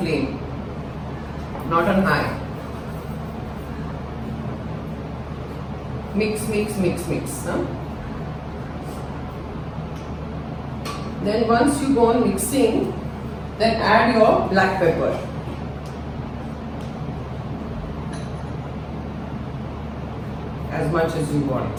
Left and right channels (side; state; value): both; identical; correlation 1.00